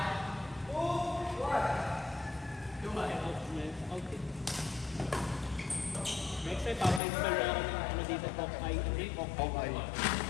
Next time, papa-install na ako ng ano dito, Okay.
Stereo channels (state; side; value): drops out; right; at 7.0 s